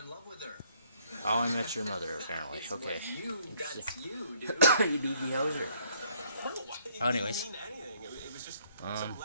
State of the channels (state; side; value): inverted; both; correlation -0.66